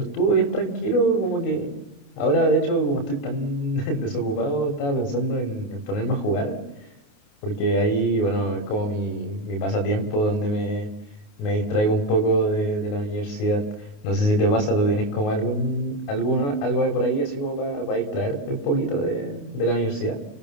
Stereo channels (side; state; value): right; late; 28 ms